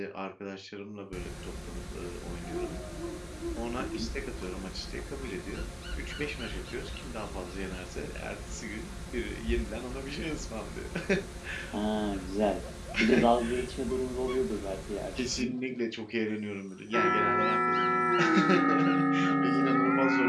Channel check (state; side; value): identical; both; correlation 1.00